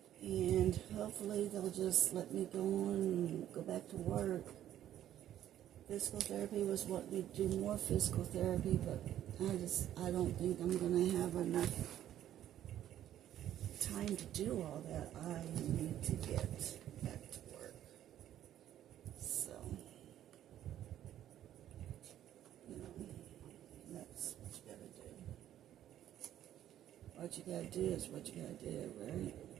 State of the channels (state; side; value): quieter; left; 11.7 dB